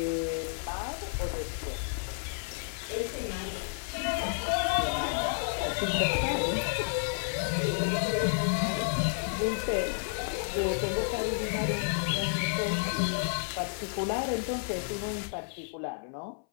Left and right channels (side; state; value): right; silent; 57 dB below the other